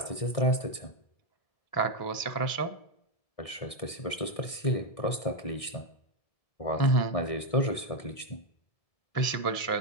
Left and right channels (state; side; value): late; right; 1.6 ms